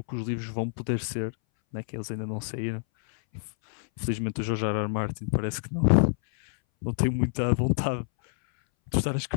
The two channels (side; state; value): right; silent; 60 dB below the other